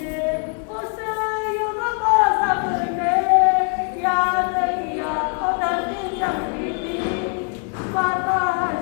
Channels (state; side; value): quieter; right; 38.7 dB